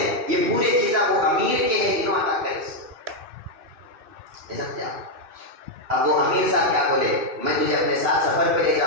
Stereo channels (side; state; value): left; late; 2.6 ms